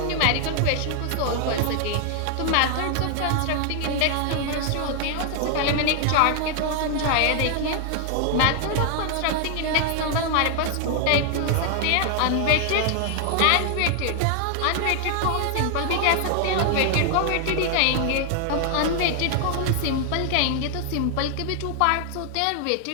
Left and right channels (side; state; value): both; different; correlation 0.00